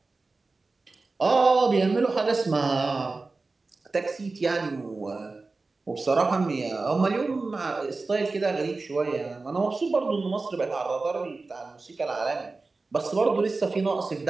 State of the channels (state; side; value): quieter; left; 3.7 dB